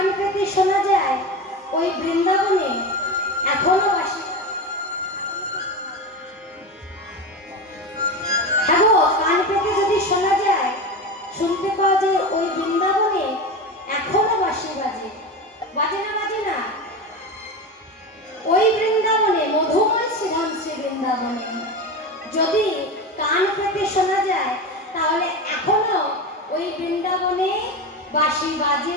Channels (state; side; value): normal; both; correlation 0.23